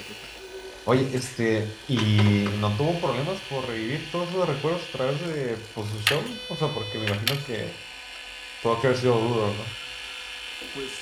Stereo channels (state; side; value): identical; both; correlation 1.00